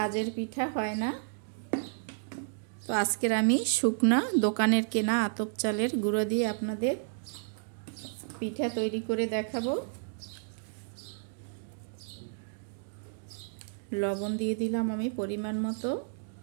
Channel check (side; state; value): left; silent; digital silence